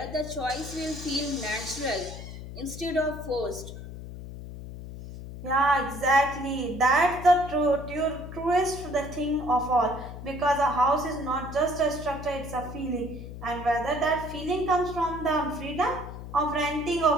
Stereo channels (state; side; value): noise; left; hum, 11 dB below the sound